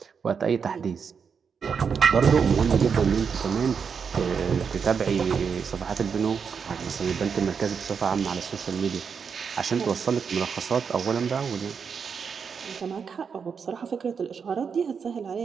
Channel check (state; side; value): quieter; left; 6.3 dB